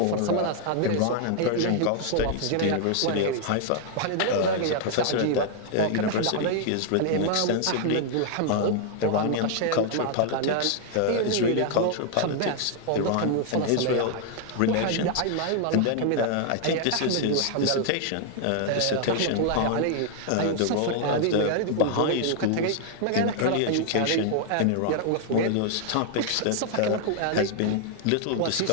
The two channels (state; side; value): different; both; correlation 0.00